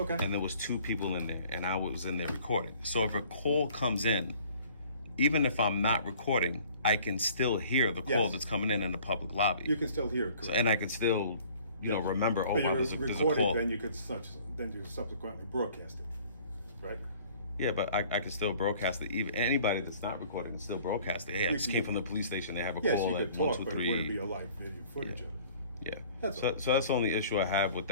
and there was 2 people in there, and I was in there recording. So if a call comes in, even if I'm not recording, I can still hear the call Yes. that's coming in the public lobby. You can still hear it. So, and I can still, remember. Oh, But wow, you're there's a recording, call. then you subsequently broadcast it, right? Yeah, but I can still broadcast it. Even anybody that's not recording can still broadcast it. Hey, I just came from the police station. They have a Yes, call you at could 1, talk, 2, but it wouldn't be 3. a live video footage of it. Yeah. That's So, all. so that's the only issue I have with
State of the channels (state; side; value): inverted; both; correlation -0.52